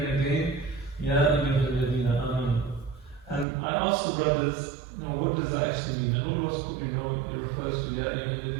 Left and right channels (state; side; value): drops out; left; at 3.5 s